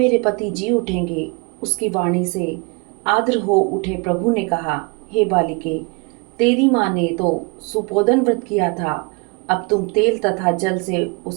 पति जी उठेंगे? उसकी वाणी से आर्द्र हो उठे प्रभु ने कहा, हे बालिके, तेरी माँ ने तो सुपोदन व्रत किया था। अब तुम तेल तथा जल से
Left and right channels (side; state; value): left; quieter; 31.4 dB